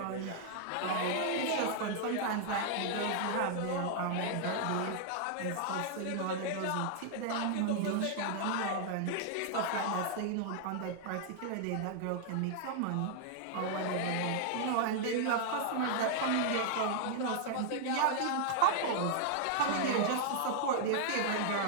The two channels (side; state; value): both; different; correlation -0.01